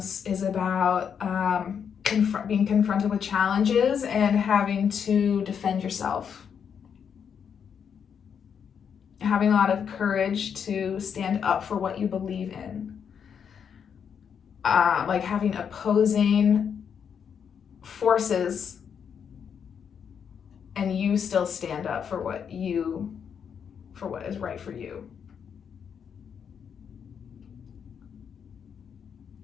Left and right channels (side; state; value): right; quieter; 7.4 dB